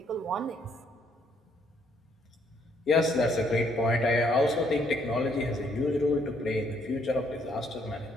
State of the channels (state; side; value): normal; both; correlation 0.69